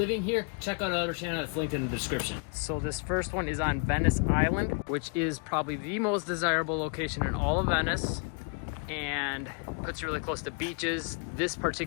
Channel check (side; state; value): right; quieter; 38.0 dB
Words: here, check out our other channel that's linked in the description. So this first one is on Venice Island, which is probably the most desirable location in all of Venice, and puts you really close to beaches. This